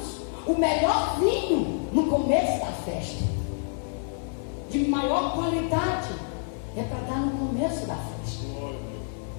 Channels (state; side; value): silent; right; 57 dB below the other